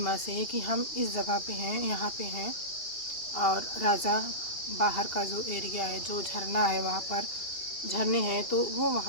से कि हम इस जगह पे हैं, यहाँ पे हैं, और राजा बाहर का जो एरिया है, जो झरना है, वहाँ पर झरने हैं, तो वो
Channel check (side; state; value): right; late; 2.8 ms